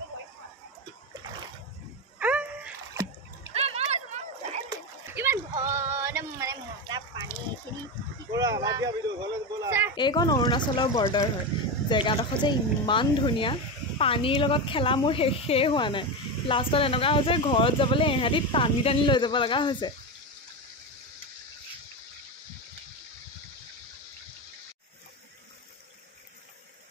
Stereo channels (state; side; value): normal; both; correlation 0.16